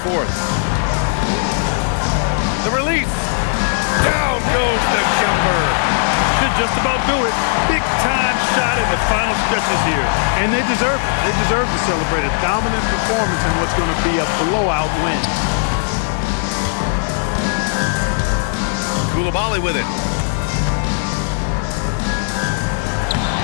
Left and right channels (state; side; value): silent; right; 61 dB below the other